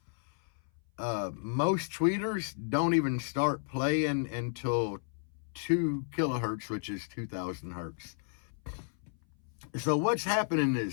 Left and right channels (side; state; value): right; silent; 56 dB below the other